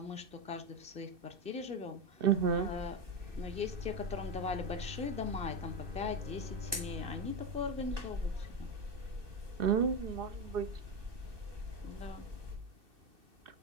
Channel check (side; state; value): left; late; 2.6 ms